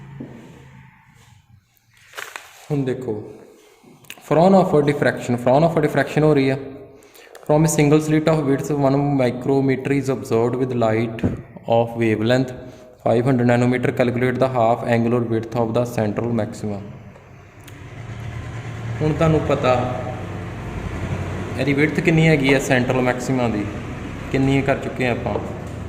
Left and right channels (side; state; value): both; identical; correlation 1.00